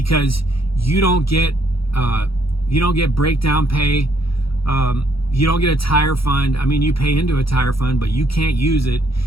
you don't get breakdown pay. You don't get a tire fund. I mean, you pay into a tire fund, but you can't use it.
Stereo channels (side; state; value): right; late; 0.75 ms